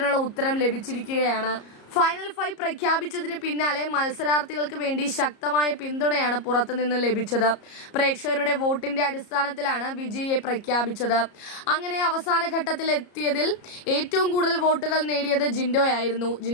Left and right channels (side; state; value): right; late; 34 ms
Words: ഉത്തരം ലഭിച്ചിരിക്കുകയാണ്. ഫൈനൽ 5 പ്രഖ്യാപിച്ചതിന് പിന്നാലെ മത്സരാർത്ഥികൾക്ക് വേണ്ടി ശക്തമായ പിന്തുണയാണ് പുറത്തുനിന്ന് ലഭിച്ചത്. പ്രേക്ഷകരുടെ വോട്ടിന്റെ അടിസ്ഥാനത്തിലാണ് വിജയിയെ പ്രഖ്യാപിച്ചത്. അങ്ങനെ അവസാന ഘട്ടത്തിൽ എത്തിയതിൽ ഏറ്റവും കൂടുതൽ വോട്ടുകൾ നേടിയത് ജിൻഡോയായിരുന്നു.